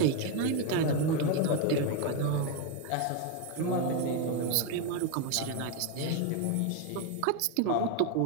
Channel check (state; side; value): different; both; correlation 0.02